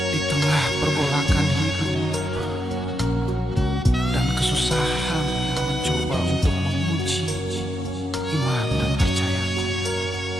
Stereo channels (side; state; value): both; normal; correlation 0.83